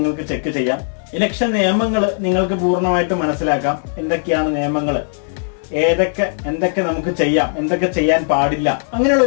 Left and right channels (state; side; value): silent; right; digital silence